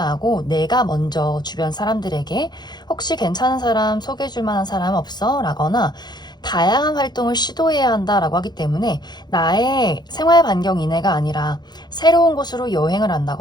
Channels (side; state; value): right; late; 0.21 ms